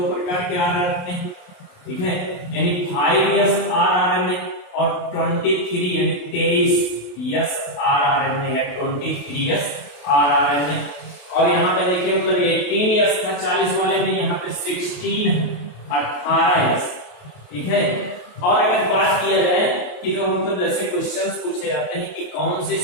प्रकार के आरएनए। ठीक है, यानी 5s आरएनए और 23 यानी 23s आरएनए या 23s आरएनए। और यहाँ पे देखिए मतलब 18s का 40 वाले में यहाँ पे 16 18s। ठीक है, और अगर बात किया जाए कि जो मतलब जैसे क्वेश्चंस पूछे जाते हैं कि कौन सी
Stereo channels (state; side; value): late; right; 28 ms